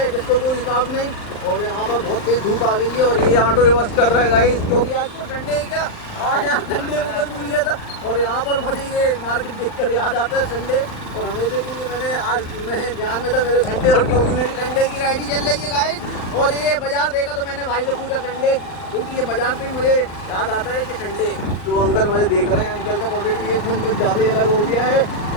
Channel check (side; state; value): right; late; 39 ms